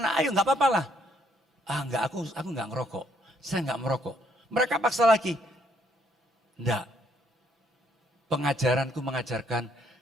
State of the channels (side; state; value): both; normal; correlation 0.69